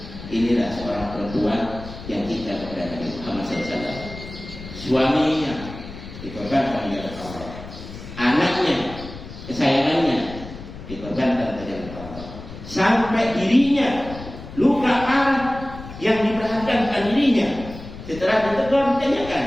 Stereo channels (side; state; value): left; noise; rumble, 13 dB below the sound